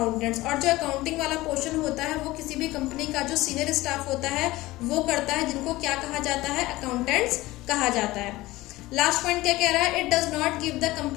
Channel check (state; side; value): quieter; right; 18.7 dB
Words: और जो अकाउंटिंग वाला पोर्शन होता है वो किसी भी कंपनी का जो सीनियर स्टाफ होता है वो करता है, जिनको क्या कहा जाता है, अकाउंटेंट्स कहा जाता है। लास्ट पॉइंट क्या कह रहा है it does not give the